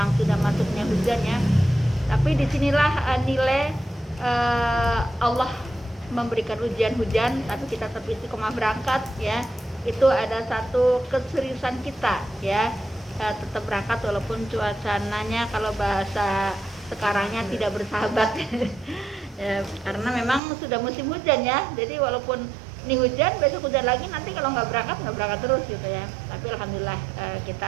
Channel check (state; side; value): drops out; left; at 20.4 s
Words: sudah masuknya hujannya, tapi disinilah nilai Allah memberikan hujan, tapi kita tetap istiqomah berangkat ya. Itu ada satu keseriusan kita ya, tetap berangkat walaupun cuacanya kalau bahasa sekarangnya tidak bersahabat ya, karena memang sudah musim hujan ya. Jadi walaupun ini hujan, besok hujan lagi, nanti kalau nggak berangkat terus gitu ya. Tapi alhamdulillah